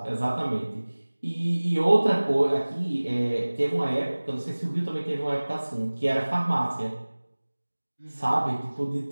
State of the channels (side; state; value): both; inverted; correlation -1.00